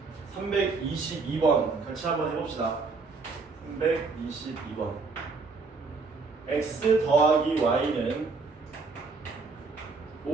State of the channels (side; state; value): left; quieter; 4.3 dB